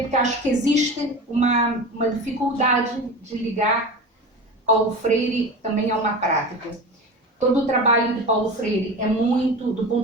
porque acho que existe uma dificuldade de ligar Paulo Freire também a uma prática. Todo o trabalho de Paulo Freire é muito, do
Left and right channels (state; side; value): normal; both; correlation 0.30